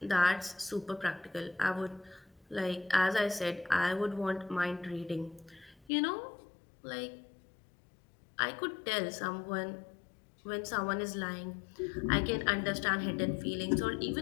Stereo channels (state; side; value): drops out; right; at 5.9 s